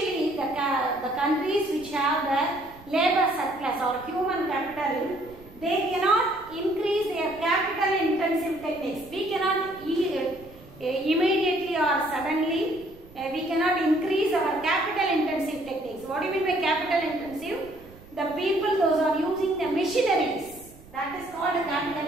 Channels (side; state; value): right; noise; rumble, 22 dB below the sound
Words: the countries which have the labor surplus or human capital, they cannot increase their capital intensive techniques. We cannot immediately or suddenly we cannot increase our capital intensive techniques. What do you mean by capital intensive? The people, those are using the machineries, that is called